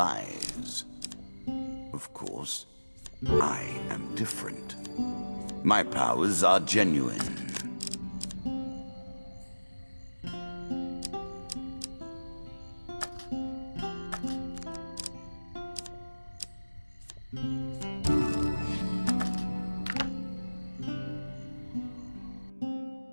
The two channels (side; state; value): both; inverted; correlation -1.00